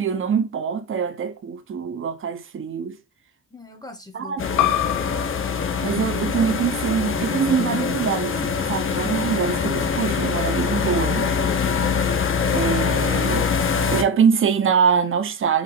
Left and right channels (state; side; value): normal; both; correlation 0.21